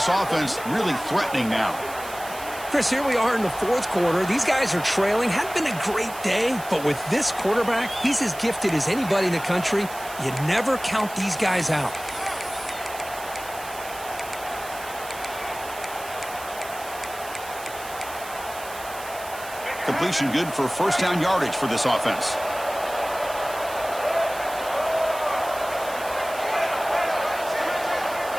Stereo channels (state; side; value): noise; right; hiss, 14 dB below the sound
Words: offense really threatening now. Chris, here we are in the fourth quarter. These guys are trailing. Hadn't been a great day, but with this quarterback, he's as gifted as anybody in the country. You never count these guys out. Completion good for first down yardage for this offense.